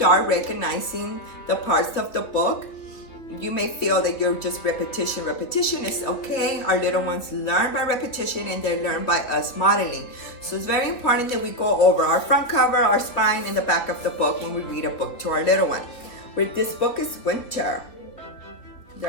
recognizing the parts of the book. You may feel that you're just repetition. Repetition is okay. Our little ones learn by repetition, and they learn by us modeling. So it's very important that we go over our front cover, our spine, and the back of the book when we read a book to our little one. This book is Winter.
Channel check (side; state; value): right; late; 3.1 ms